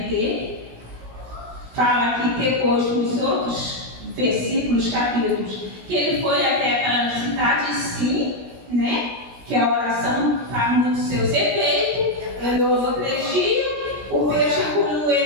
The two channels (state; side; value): late; left; 16 ms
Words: Fala aqui depois nos outros versículos, capítulos, que ele foi até aquela cidade, sim, né? Que a oração faz muito seus efeitos. Ele orou 3 dias, o peixe engoliu